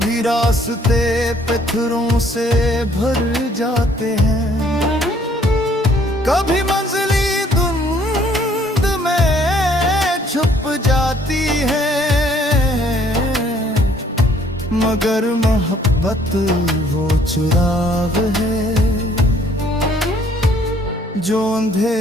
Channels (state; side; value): normal; both; correlation 0.62